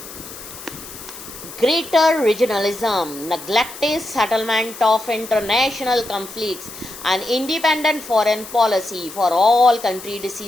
Greater regionalism, neglected settlement of international conflicts, and independent foreign policy for all country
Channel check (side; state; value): left; noise; hiss, 14 dB below the sound